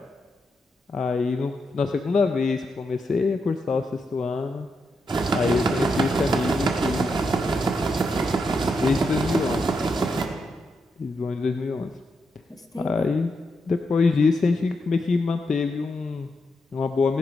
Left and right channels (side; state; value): both; normal; correlation 0.83